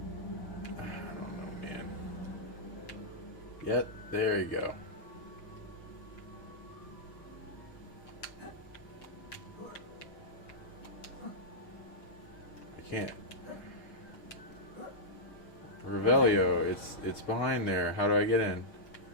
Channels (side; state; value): right; late; 6.4 ms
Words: I don't know, man. Yep, there you go. I can't. Revelio, it's behind there. How do I get in?